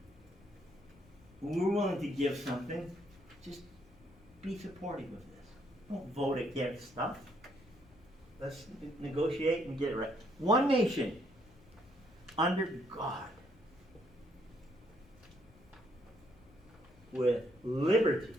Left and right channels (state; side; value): noise; left; rumble, 26 dB below the sound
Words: We're willing to give something. Just be supportive of this. Don't vote against stuff. Let's negotiate and get it right. One nation under God with liberty